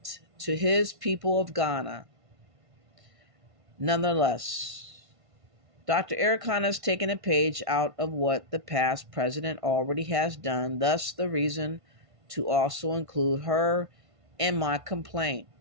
to his people of Ghana. Nonetheless, Dr. Ericana has taken a page out of what the past president already has done, thus the reason to also include her in my complaint,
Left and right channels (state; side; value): late; left; 1.5 ms